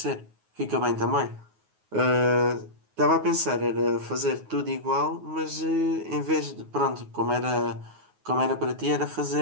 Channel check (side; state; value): left; late; 9.4 ms